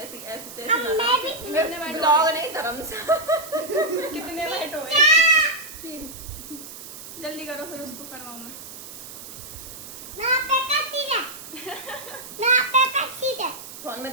ऐसे तैसे कितने वाइट ब्लॉग नहीं, धर्मशाला। कितने वाइट हो गए? 3। जल्दी करो फिर उसको करवाऊं मैं। फोन में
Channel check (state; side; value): noise; right; hiss, 13 dB below the sound